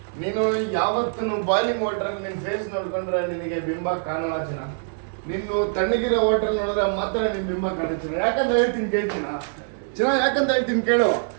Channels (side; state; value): left; silent; digital silence